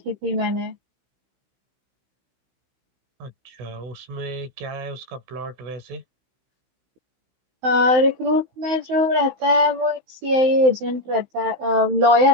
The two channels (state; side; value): late; left; 16 ms